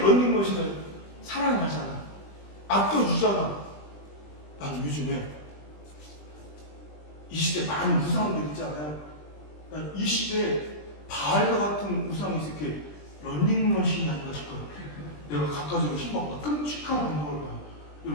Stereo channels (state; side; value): late; right; 20 ms